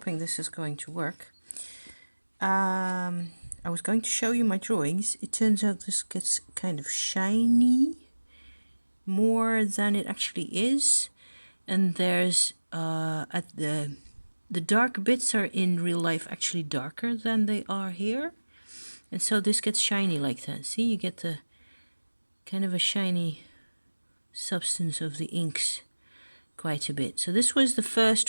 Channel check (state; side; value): inverted; both; correlation -1.00